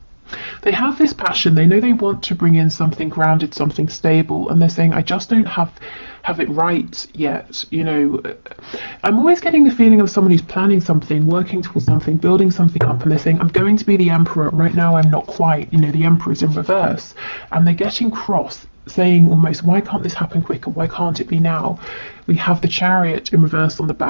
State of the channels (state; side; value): inverted; both; correlation -1.00